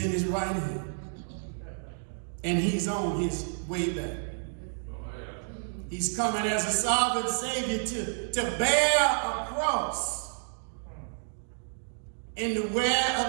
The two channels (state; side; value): silent; left; digital silence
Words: in his right hand. And he's on his way back. He's coming as a sovereign Savior to bear a cross and to